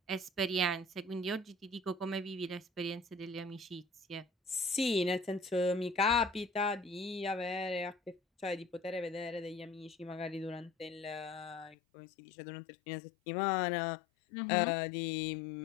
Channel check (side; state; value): right; drops out; at 11.8 s